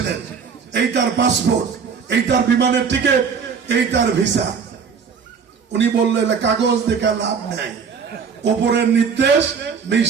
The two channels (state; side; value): quieter; left; 6.2 dB